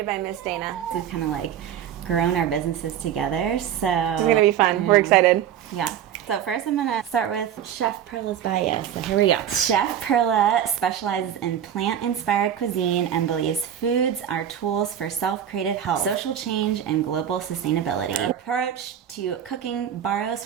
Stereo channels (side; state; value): left; quieter; 9.7 dB